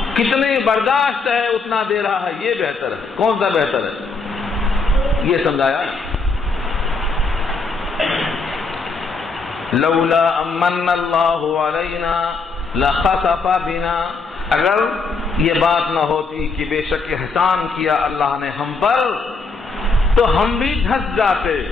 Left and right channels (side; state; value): right; quieter; 4.1 dB